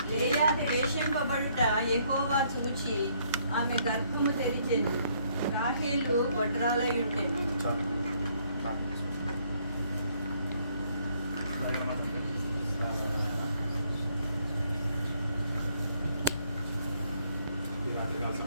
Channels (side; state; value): both; inverted; correlation -0.68